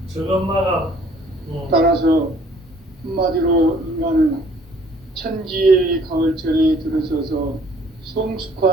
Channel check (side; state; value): both; normal; correlation 0.58